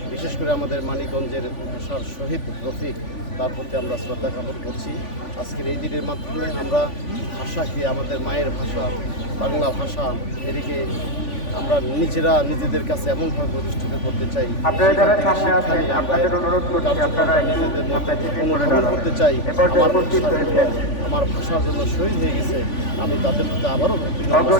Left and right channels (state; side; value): late; right; 3.5 ms